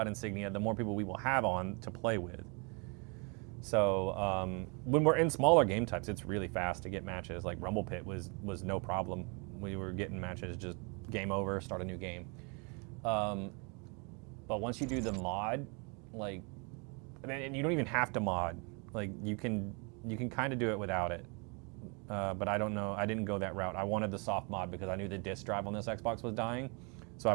Insignia, the more people we will have on to play with. So when we're in smaller game types, it's really fast to get matches. Like Rumble Pit was no problem. We were getting matches, just game over, start a new game. But once you do the mod, like, and you don't even have to mod. Like you can kind of do it without it. But I don't know. I didn't go that route. I wanted the soft mod because I knew the disk drive on this Xbox was dying. So I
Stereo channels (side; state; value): left; quieter; 33.7 dB